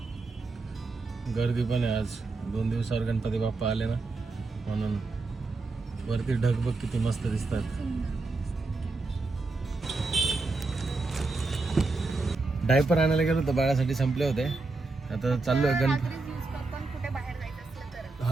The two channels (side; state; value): left; quieter; 3.5 dB